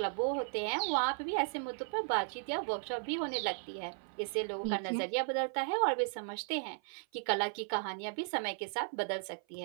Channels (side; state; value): left; silent; 54 dB below the other